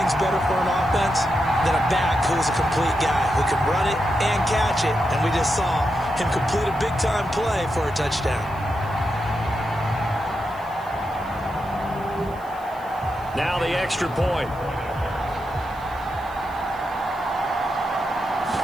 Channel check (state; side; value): noise; right; hiss, 26 dB below the sound